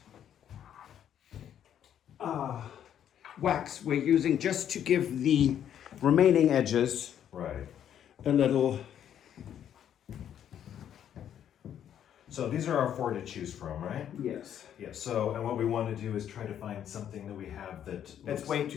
wax we're using just to give the remaining edges Right. a little. So these are our 4 to choose from, right? Yes. Yeah, so, and what we want to do is try to find something that we have that's way too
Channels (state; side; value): quieter; right; 9.8 dB